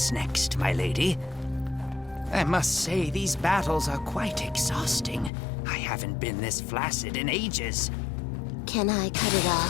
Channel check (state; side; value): drops out; right; at 5.3 s